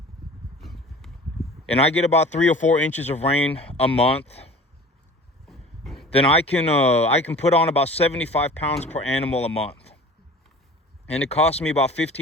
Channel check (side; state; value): both; normal; correlation 0.43